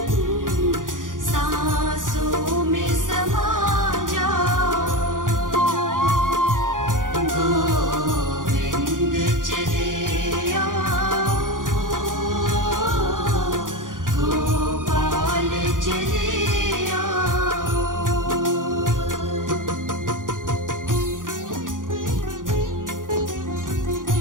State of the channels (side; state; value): left; late; 0.89 ms